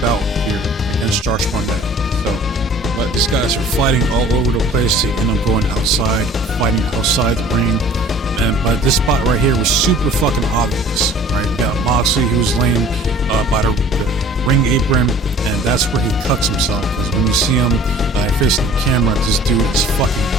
here against Josh Barnett. But these guys are fighting all over the place. They end up going outside, fighting outside the ring. But this spot right here was super fucking obvious. Right? You got Moxley, who's laying by the ring apron, and that's where he cuts himself. Because when you see him facing the camera, this dude is fucking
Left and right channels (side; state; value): both; normal; correlation 0.49